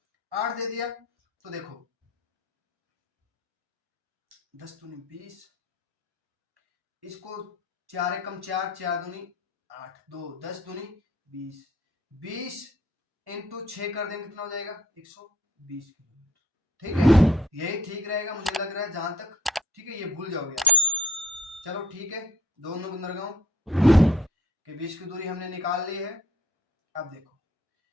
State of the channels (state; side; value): normal; both; correlation 0.56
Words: 8 दे दिया तो देखो 10 दूनी 20, इसको 4 एकम 4, 4 दूनी 8, 2 10 दूनी 20, 20 इंटू 6 कर देंगे कितना हो जाएगा, 120 किलोमीटर। ठीक है, यही ठीक रहेगा मुझे लग रहा है जहां तक। ठीक है, ये भूल जाओगे आप। चलो ठीक है, दोनों बंदरगाहों के बीच की दूरी हमने निकाल ली है। अब देखो